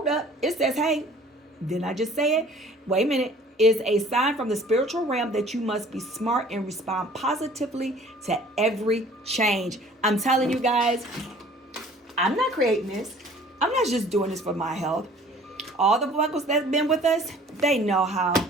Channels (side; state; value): both; normal; correlation 0.51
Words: up. It says, hey, didn't I just say it? Wait a minute. Is a sign from the spiritual realm that you must be smart and respond positively to every change. I'm telling you guys, I'm not creating this. I'm not just doing this for my health. All the buckles that's been with us, they know how